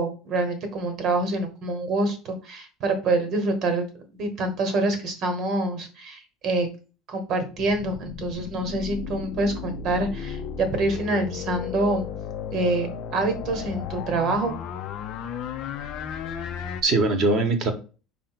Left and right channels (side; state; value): both; normal; correlation 0.45